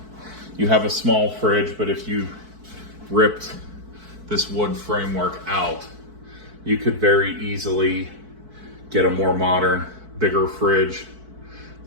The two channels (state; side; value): late; left; 4.6 ms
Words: you have a small fridge, but if you ripped this wood framework out, you could very easily get a more modern, bigger fridge